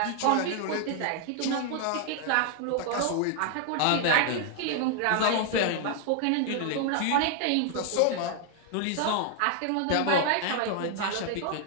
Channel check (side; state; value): both; different; correlation 0.00